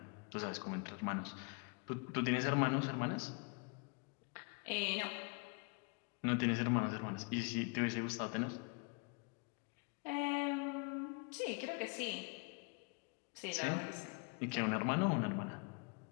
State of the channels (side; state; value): right; quieter; 33.4 dB